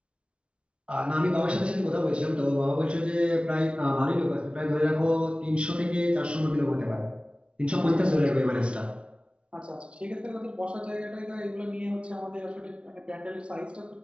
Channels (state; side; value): late; left; 0.059 ms